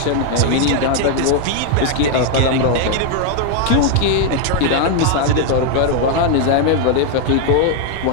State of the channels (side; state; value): both; different; correlation 0.01